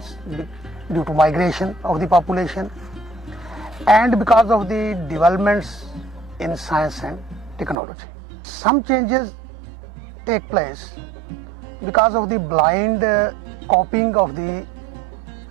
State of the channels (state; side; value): drops out; left; at 7.8 s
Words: due to migration of the population, and because of the developments in science and technology. Some changes take place because of the blind copying of the